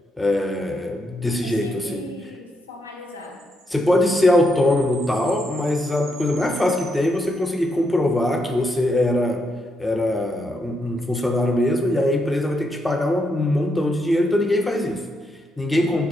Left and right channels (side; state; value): both; normal; correlation 0.79